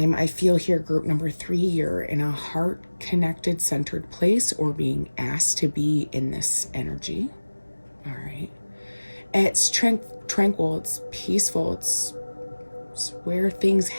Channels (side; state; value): both; inverted; correlation -1.00